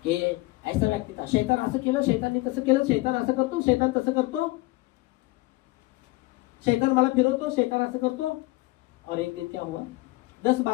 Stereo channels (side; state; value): right; quieter; 21.4 dB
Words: कि ऐसा व्यक्ति था, शैतान असं केलं, शैतान ने तसं केलं, शैतान असं करतो, शैतान तसं करतो, शैतान मला फिरवतो, शैतान असं करतो। और एक दिन क्या हुआ, 10